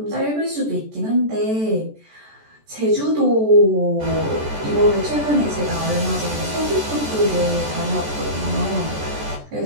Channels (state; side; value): late; left; 14 ms